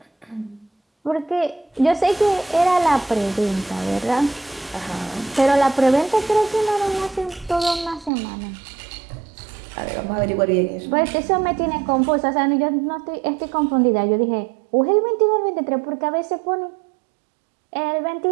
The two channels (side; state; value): left; drops out; at 8.1 s